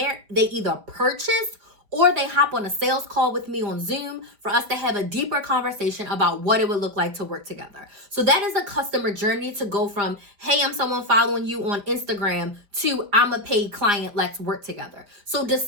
they either purchase or they hop on a sales call with me on Zoom for us to have a deeper conversation about what it would look like to work together. So that is a customer journey to go from, hey, I'm someone following you on Instagram to I'm a paid client, let's work together. So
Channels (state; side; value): late; left; 5.0 ms